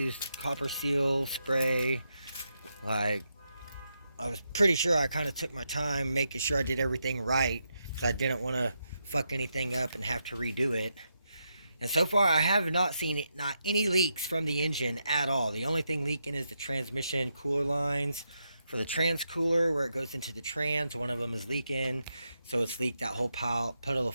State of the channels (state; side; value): inverted; both; correlation -0.83